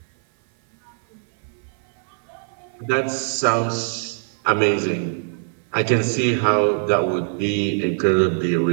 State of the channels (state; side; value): silent; left; 56 dB below the other